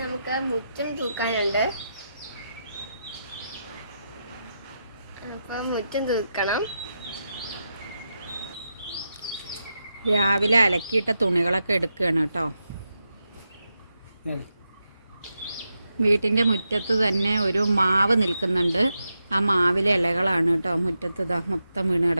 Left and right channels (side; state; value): both; inverted; correlation -0.87